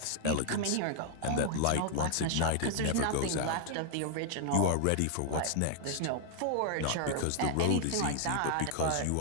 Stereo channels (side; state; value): both; different; correlation 0.00